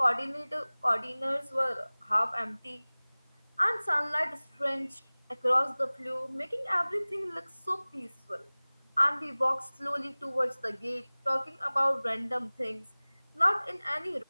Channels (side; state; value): both; inverted; correlation -1.00